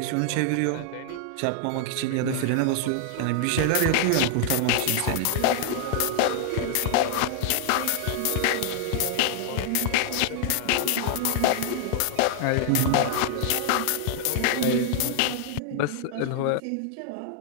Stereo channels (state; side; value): different; both; correlation 0.00